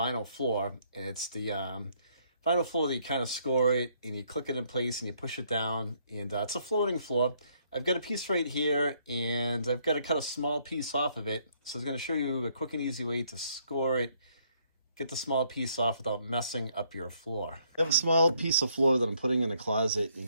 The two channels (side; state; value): both; inverted; correlation -0.69